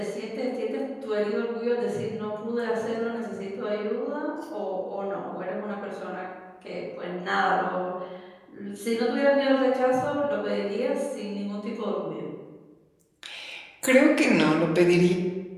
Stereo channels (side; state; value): both; identical; correlation 1.00